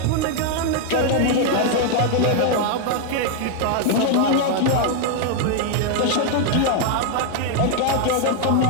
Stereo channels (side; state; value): both; different; correlation 0.00